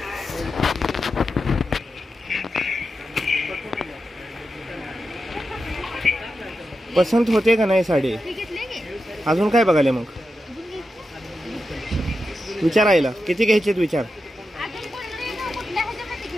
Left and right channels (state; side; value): normal; both; correlation 0.89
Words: पसंत होते का नाही साडी? हे घेतले की? अजून काय बघायला मग? विचारायला किती घ्यायचे विचार. अजून कोणते ना कुठल्या ह्याच्यामध्ये